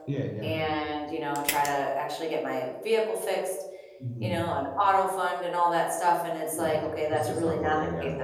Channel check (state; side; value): identical; both; correlation 1.00